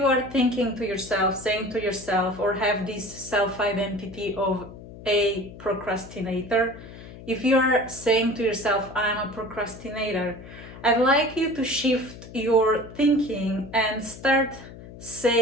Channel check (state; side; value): noise; left; hum, 16 dB below the sound